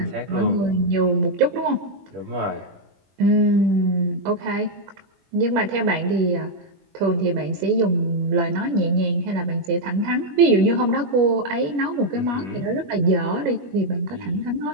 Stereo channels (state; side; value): late; left; 21 ms